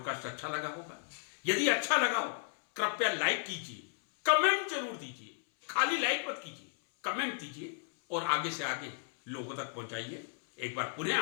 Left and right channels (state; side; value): silent; right; 55 dB below the other